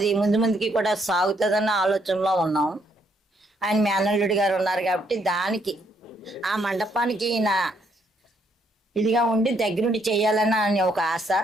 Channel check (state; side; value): normal; both; correlation 0.72